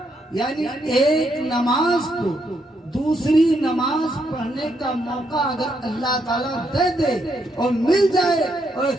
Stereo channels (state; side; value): normal; both; correlation 0.77